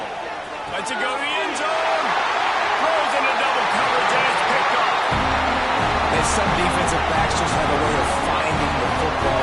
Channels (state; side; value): identical; both; correlation 1.00